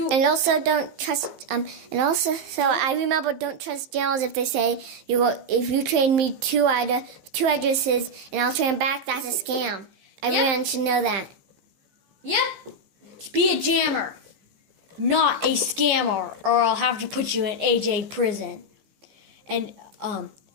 And also don't trust, so I remember don't trust jails if they say, if you trade me two addresses and I'll trade them back, that's a scam. Everyone should know that. Yep. Be a jammer, not a scammer, or I'll have to put you in AJ prison. And,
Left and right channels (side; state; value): left; late; 15 ms